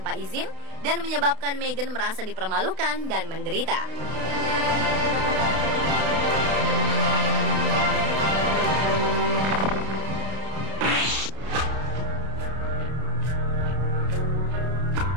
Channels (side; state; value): left; late; 32 ms